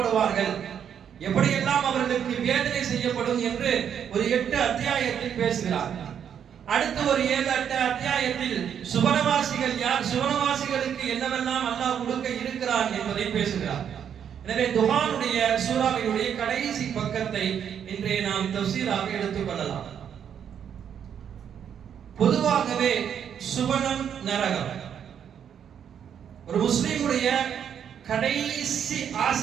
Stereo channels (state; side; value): quieter; left; 8.5 dB